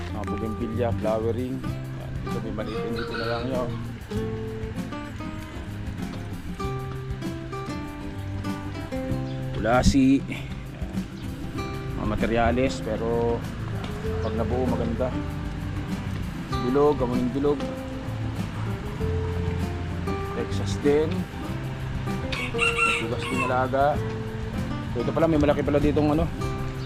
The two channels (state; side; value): identical; both; correlation 1.00